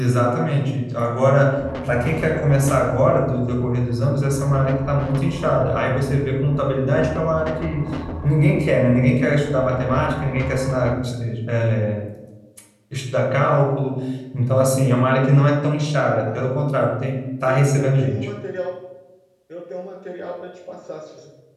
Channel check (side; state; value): both; identical; correlation 1.00